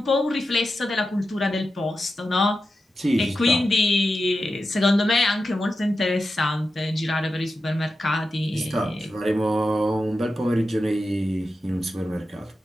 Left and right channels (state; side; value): normal; both; correlation 0.90